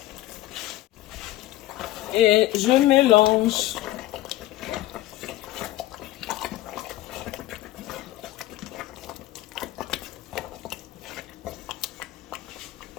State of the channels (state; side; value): quieter; right; 15.9 dB